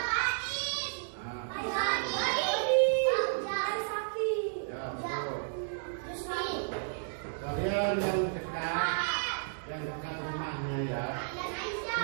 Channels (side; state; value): left; silent; 56 dB below the other